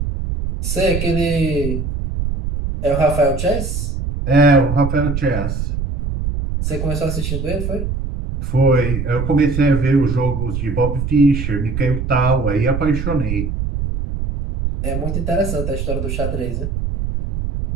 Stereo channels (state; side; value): noise; right; rumble, 3 dB below the sound